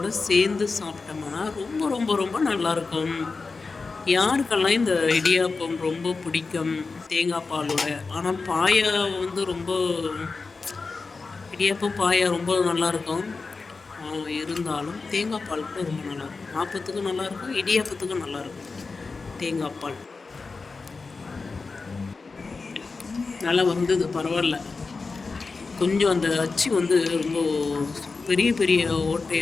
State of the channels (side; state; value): right; quieter; 4.2 dB